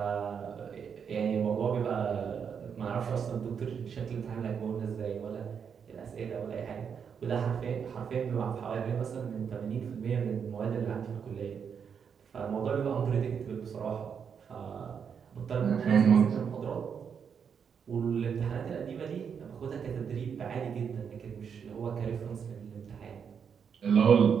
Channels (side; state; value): left; quieter; 7.0 dB